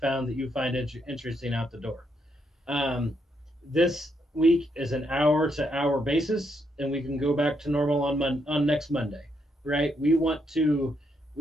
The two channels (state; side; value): normal; both; correlation 0.77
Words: that you find interesting out the door. Um, this week is an hour to hour basis, and we can go back to normal on next Monday, right? We want to